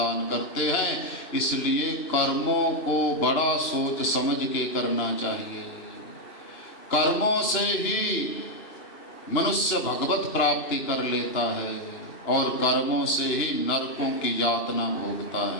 करते हैं। इसलिए कर्मों को बड़ा सोच समझ के करना चाहिए। कर्मों से ही मनुष्य भगवत प्राप्ति कर लेता है और कर्मों से ही नरकों की यातना भोगता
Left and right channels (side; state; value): right; late; 2.8 ms